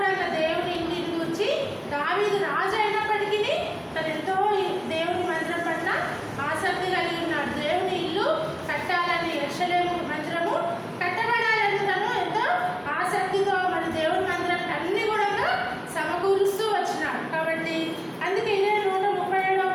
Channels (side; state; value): both; identical; correlation 1.00